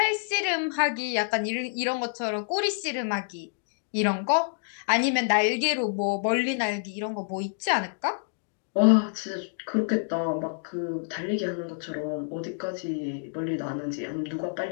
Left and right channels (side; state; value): right; silent; digital silence